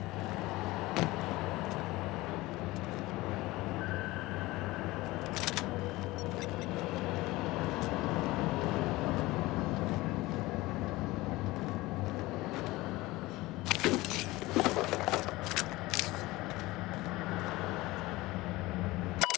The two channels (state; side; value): quieter; right; 19.8 dB